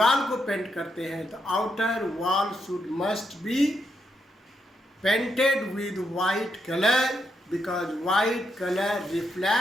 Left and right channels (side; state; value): both; normal; correlation 0.81